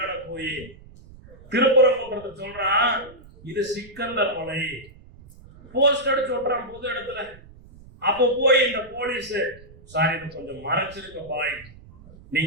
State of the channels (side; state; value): right; noise; rumble, 21 dB below the sound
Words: போய் திருப்பரங்குன்றத்தை சொல்றான், இது சிக்கந்தர் மலை. போஸ்ட் அடிச்சு ஓட்டுறான் பொது இடத்துல. அப்ப போய் இந்த போலீஸ், சாரி இது கொஞ்சம் மறைச்சிருக்க பாய்,